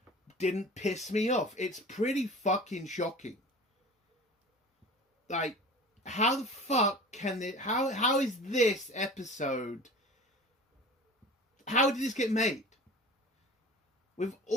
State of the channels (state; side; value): normal; both; correlation 0.39